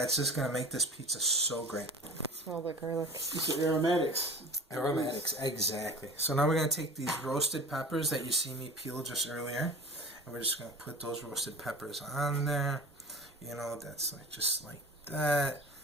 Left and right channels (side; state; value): both; normal; correlation 0.38